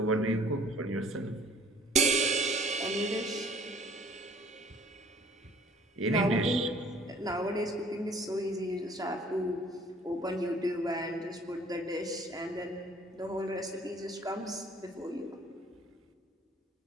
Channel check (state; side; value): normal; both; correlation 0.54